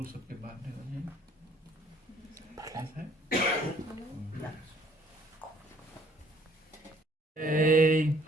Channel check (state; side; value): normal; both; correlation 0.60